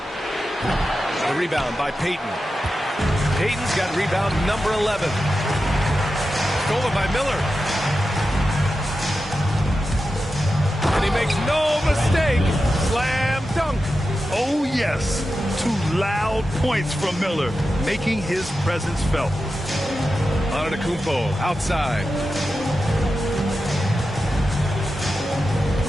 The rebound by Payton. Payton's got rebound number 11. Stolen by Miller. And he makes no mistake. Slam dunk. Oh, yes. 2 loud points from Miller, making his presence felt. Antetokounmpo outside.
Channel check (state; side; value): normal; both; correlation 0.91